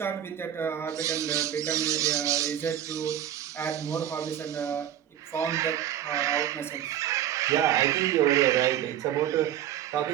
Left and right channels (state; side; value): quieter; left; 11.0 dB